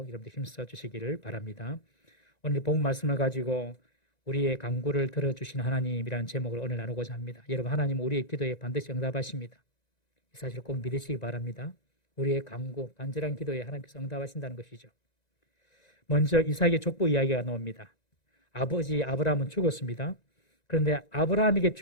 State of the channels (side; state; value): right; late; 1.9 ms